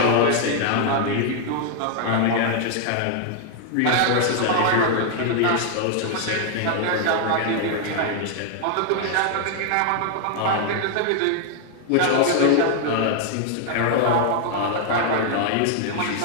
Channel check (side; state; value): both; different; correlation 0.00